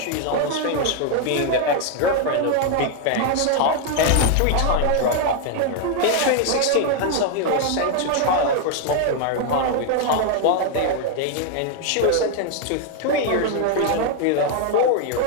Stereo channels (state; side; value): different; both; correlation 0.00